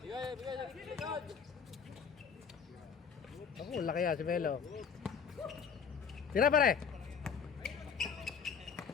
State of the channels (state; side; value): quieter; right; 6.6 dB